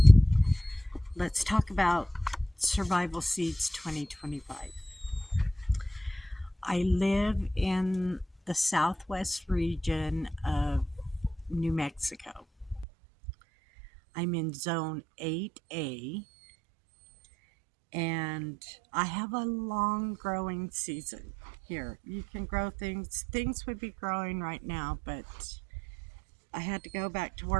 let's talk about Survival Seeds 2025. I live in the southwest region of New Mexico. I'm in zone 8A and I have a long growing season here. You can grow things. Things would be growing right now, but I had to go back to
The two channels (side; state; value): left; drops out; at 12.9 s